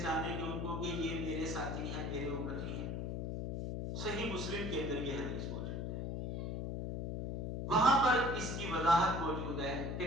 گے ان کو کہ یہ میرے ساتھی ہیں، میرے امتی ہیں؟ صحیح مسلم کے اندر یہ حدیث موجود ہے، وہاں پر اس کی وضاحت موجود ہے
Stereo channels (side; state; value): left; noise; hum, 3 dB below the sound